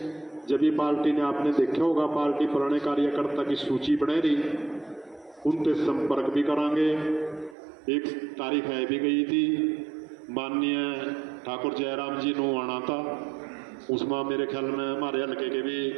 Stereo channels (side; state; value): left; drops out; at 7.6 s